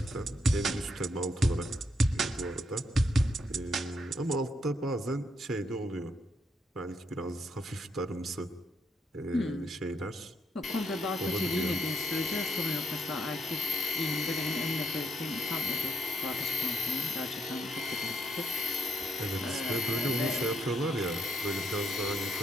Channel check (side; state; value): both; normal; correlation 0.76